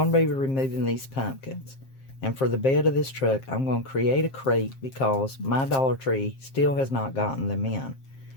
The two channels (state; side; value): late; right; 7.5 ms